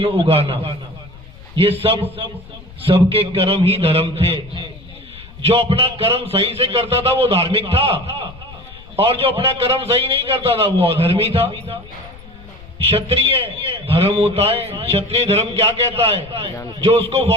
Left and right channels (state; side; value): noise; left; rumble, 19 dB below the sound